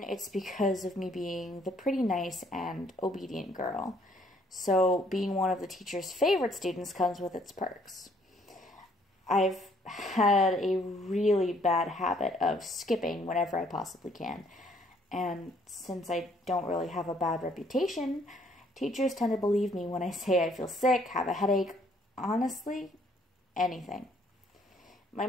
it's because of me being the pretty nice and obedient girl. So being one of the teacher's favorite students comes with its perks. I've had a really bad habit of skipping whenever I possibly can. And since I don't really have a bad reputation, teachers tend to believe me when I say I feel sick, have a headache, honestly, anything. My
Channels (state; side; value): normal; both; correlation 0.64